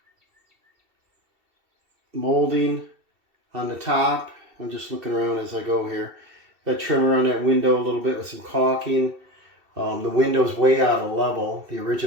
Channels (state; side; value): late; left; 2.7 ms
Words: molding on the top. I'm just looking around as I go here. Got trim around that window a little bit with some caulking. The window's way out of level, the